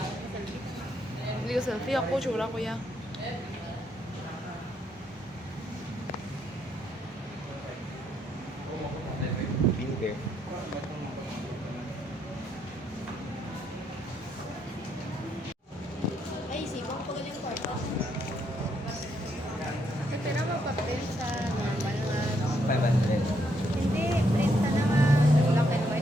Hindi ko selfie ako, tsura ko ya. Vinegar. Ay, sibong ko yung kwarto. Pero mapapin sa normal nga. 500. Hindi, print na nga. Black and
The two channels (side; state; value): both; normal; correlation 0.75